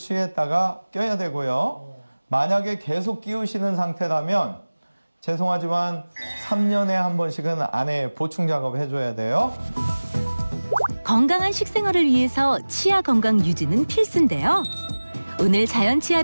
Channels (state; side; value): inverted; both; correlation -1.00